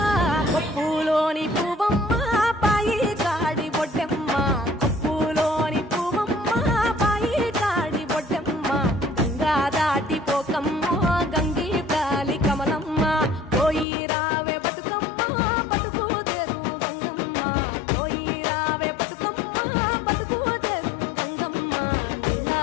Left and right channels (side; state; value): right; drops out; at 13.9 s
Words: కొప్పులోని పువ్వమ్మ పాయి కాడి బొడ్డెమ్మ కొప్పులోని పువ్వమ్మ పాయి కాడి బొడ్డెమ్మ గంగా దాటిపోకమ్మ గంగీ తాలి కమలమ్మ పోయి రావే బతుకమ్మ బతుకు తెరు గంగమ్మ పోయి రావే బతుకమ్మ బతుకు తెరు గంగమ్మ నీలా